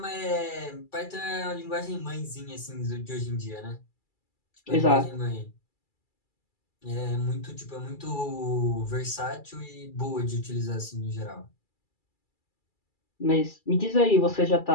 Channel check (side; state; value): right; late; 2.3 ms